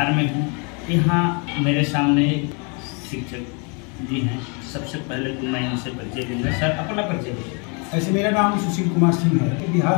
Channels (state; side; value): quieter; right; 34.5 dB